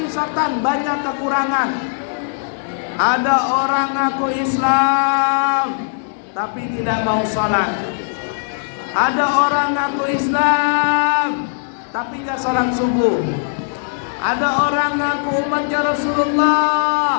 banyak kekurangan. Ada orang ngaku Islam tapi tidak mau salat. Ada orang ngaku Islam tapi enggak salat subuh. Ada orang ngaku umatnya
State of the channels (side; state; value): right; silent; digital silence